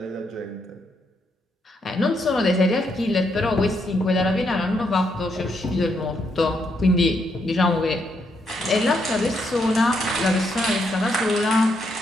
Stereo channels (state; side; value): normal; both; correlation 0.77